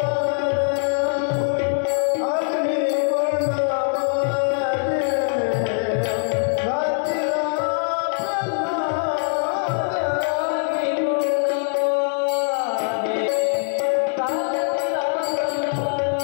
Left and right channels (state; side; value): silent; right; digital silence